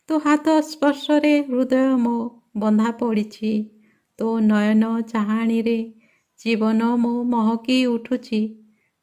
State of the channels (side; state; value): both; identical; correlation 1.00